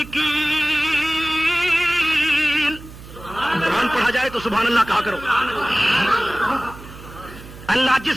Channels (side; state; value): right; noise; hum, 17 dB below the sound